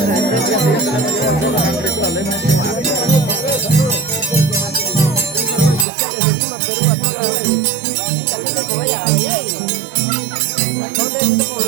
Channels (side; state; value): left; drops out; at 5.9 s